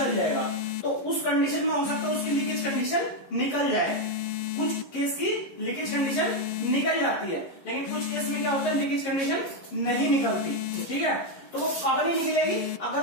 जाएगा। तो उस कंडीशन में हो सकता है उसकी लीकेज कंडीशन निकल जाए, कुछ केस की लीकेज कंडीशन निकल जाती है, लेकिन कुछ केस में क्या होता है, लीकेज कंडीशन नहीं निकलती, ठीक है। तो वो कब नहीं निकलेगी,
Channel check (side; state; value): right; late; 11 ms